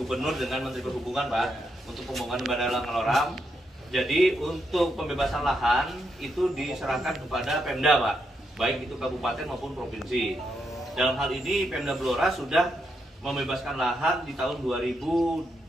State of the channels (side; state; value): both; normal; correlation 0.81